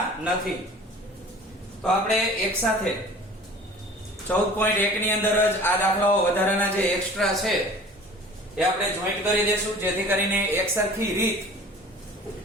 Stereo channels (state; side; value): normal; both; correlation 0.44